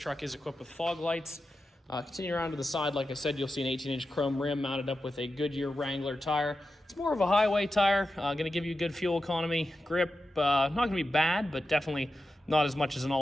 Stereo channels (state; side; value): normal; both; correlation 0.91